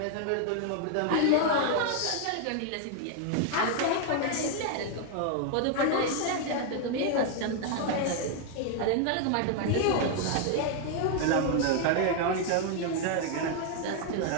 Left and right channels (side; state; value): both; different; correlation 0.00